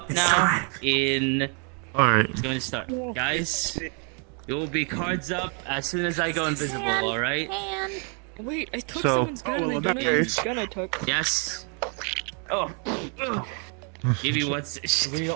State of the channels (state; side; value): quieter; left; 39.5 dB